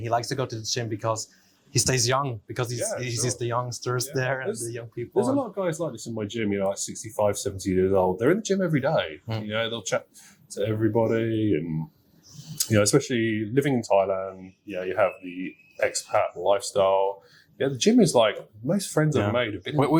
he likes to go to the gym because he stays young, because he sees the youngsters there and the young people. There's a lot of guys like this in my gym. Like 65, 70 years old. They're in the gym every day. They'll chat to everybody and. Especially living in Thailand, you have the expat lifestyle. The gym is like, most friends I've made have been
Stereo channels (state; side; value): identical; both; correlation 1.00